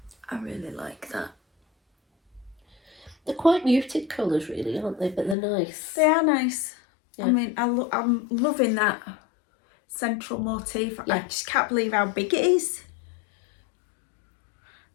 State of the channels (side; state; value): right; drops out; at 5.4 s